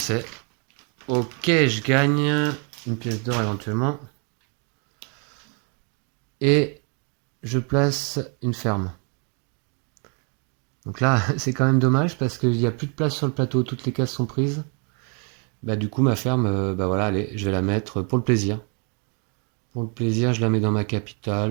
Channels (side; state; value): left; quieter; 36.8 dB